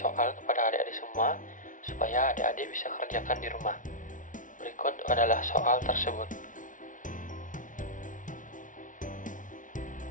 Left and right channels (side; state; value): right; late; 0.38 ms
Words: kepada adik-adik semua supaya adik-adik bisa kerjakan di rumah. Berikut adalah soal tersebut.